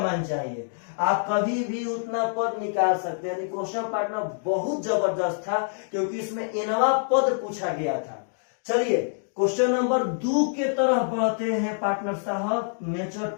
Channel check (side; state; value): right; silent; digital silence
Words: चाहिए। आप कभी भी उतना पद निकाल सकते हैं। क्वेश्चन पार्टनर बहुत जबरदस्त था क्योंकि इसमें एनवा पद पूछा गया था। चलिए क्वेश्चन नंबर 2 के तरफ बढ़ते हैं पार्टनर साहब।